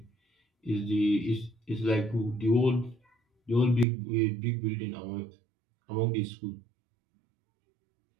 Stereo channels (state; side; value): drops out; left; at 3.9 s